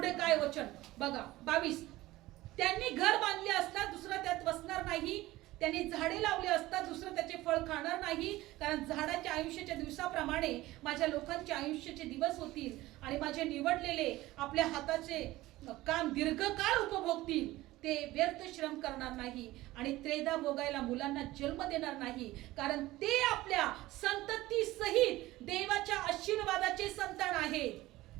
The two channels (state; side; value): quieter; left; 17.6 dB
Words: काय वचन बघा, 22, त्यांनी घर बांधले असता दुसरा त्यात बसणार नाही, त्यांनी झाडे लावले असता दुसरं त्याचे फळ खाणार नाही. कारण झाडाच्या आयुष्याच्या दिवसाप्रमाणे माझ्या लोकांचे आयुष्याचे दिवस होतील आणि माझे निवडलेले आपल्या हाताचे काम दीर्घकाळ उपभोगतील. ते व्यर्थ श्रम करणार नाही आणि त्रेधा भोगायला मुलांना जन्म देणार नाही. कारण ते आपल्या संतती सहित देवाच्या आशीर्वादाचे संतान आहेत.